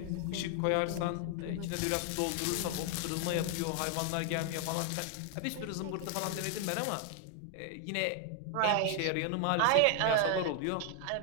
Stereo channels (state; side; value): different; both; correlation 0.00